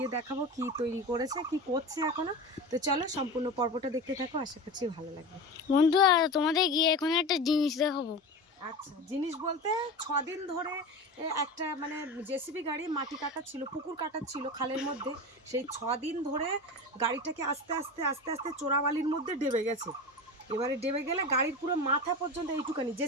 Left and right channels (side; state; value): both; normal; correlation 0.28